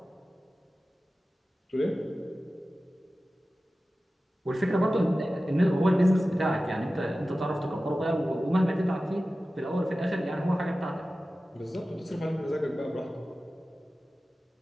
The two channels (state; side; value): normal; both; correlation 0.95